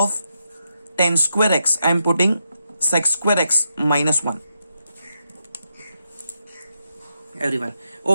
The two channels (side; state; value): both; inverted; correlation -0.83